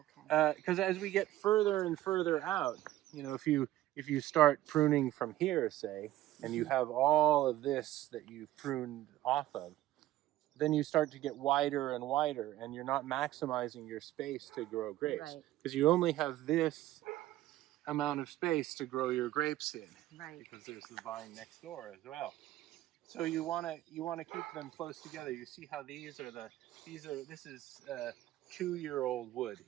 Because as we get further and further out, if you start pruning from here, say, and you have all of this that you've pruned off of, then you start to get wider and wider, and you're not maximizing your space to grow grapes, Right. because you only have this amount of space to grow your grapes in, Right. because there's the vine next door as well. So you want to keep them close together. You see how this is 2-year-old wood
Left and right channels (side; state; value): left; quieter; 14.9 dB